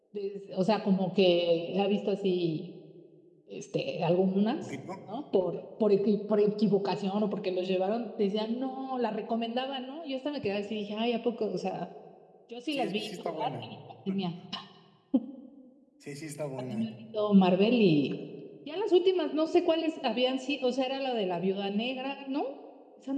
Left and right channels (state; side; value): identical; both; correlation 1.00